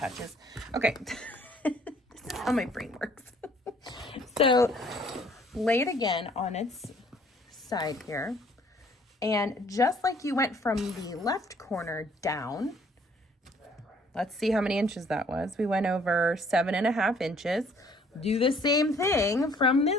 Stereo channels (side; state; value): both; normal; correlation 0.60